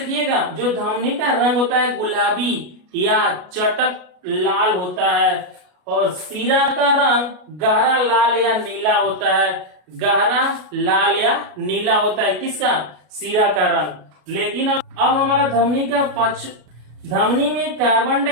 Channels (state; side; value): late; left; 33 ms